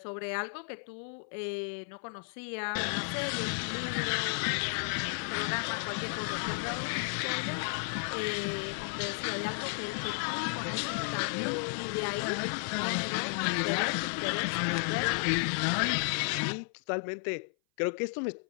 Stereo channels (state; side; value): silent; right; 56 dB below the other